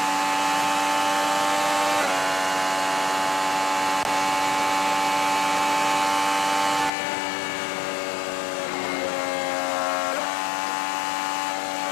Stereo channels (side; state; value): right; drops out; at 6.9 s